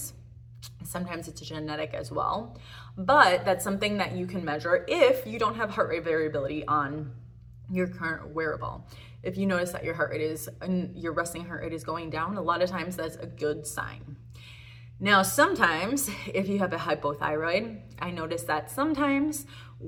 Sometimes it's genetic as well, but that's something that you can measure if you don't have heart rate variability on your current wearable. If you notice that your resting heart rate is going down, a lot of times that's a good sign. Now, sometimes if you have a hypothyroid, I notice that sometimes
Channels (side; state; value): both; identical; correlation 1.00